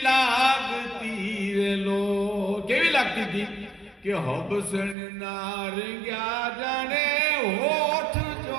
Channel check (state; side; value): drops out; left; at 5.0 s